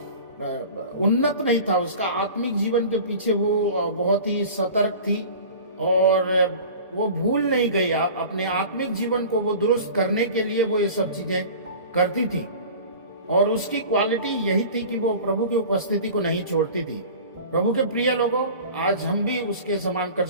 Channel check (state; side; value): inverted; both; correlation -0.39